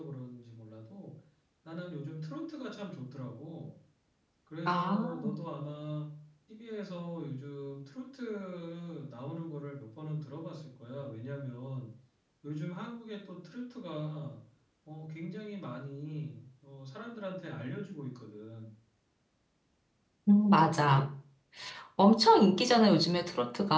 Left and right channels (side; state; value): both; identical; correlation 1.00